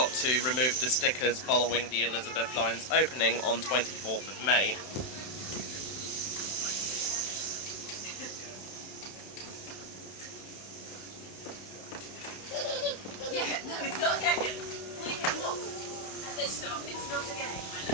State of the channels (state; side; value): late; right; 31 ms